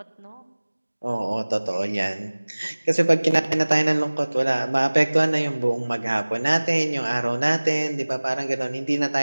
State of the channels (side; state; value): both; inverted; correlation -1.00